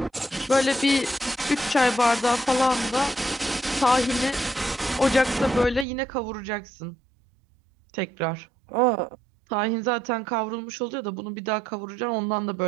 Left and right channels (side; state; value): left; drops out; at 5.9 s